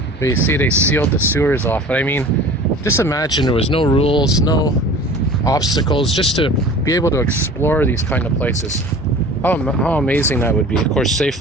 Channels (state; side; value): normal; both; correlation 0.42